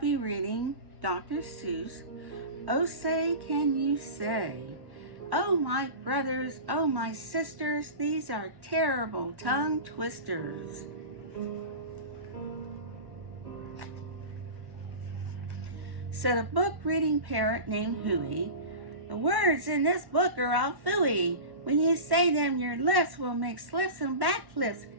reading Dr. Seuss, Oh Say Can You Say? Oh my brothers, oh my sisters, these are terrible tongue twisters. Said a book reading parrot named Huey, the words in this book are all phooey. When you say them, your lips will make slips and backflips,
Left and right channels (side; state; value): left; late; 1.1 ms